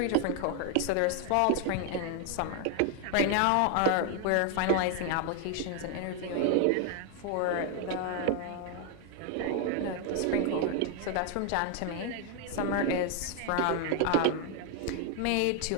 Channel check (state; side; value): different; both; correlation 0.00